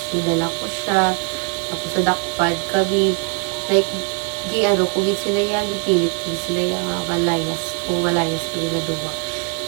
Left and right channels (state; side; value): quieter; left; 38.2 dB